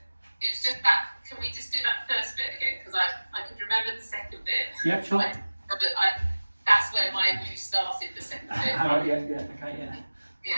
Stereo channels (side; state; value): both; inverted; correlation -1.00